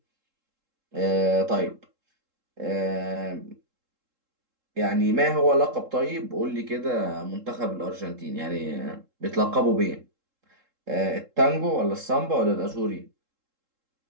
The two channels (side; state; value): left; late; 3.7 ms